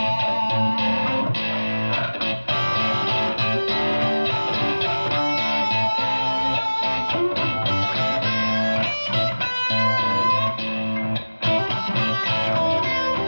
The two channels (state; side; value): inverted; both; correlation -1.00